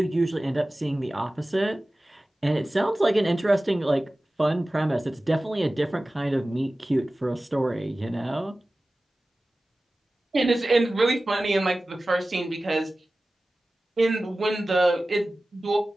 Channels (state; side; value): normal; both; correlation 0.97